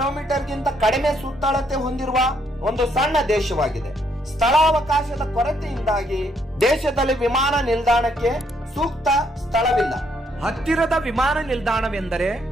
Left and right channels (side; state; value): both; normal; correlation 0.72